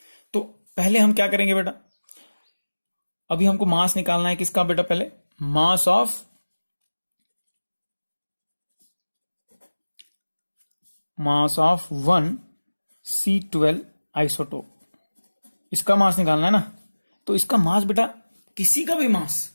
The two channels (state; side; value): inverted; both; correlation -1.00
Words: तो पहले हम क्या करेंगे बेटा, अभी हमको मास निकालना है किसका बेटा, पहले mass of mass of 1 C12 isotope, इसका मास निकालना है ना। तो इसका मास बेटा, किसी का भी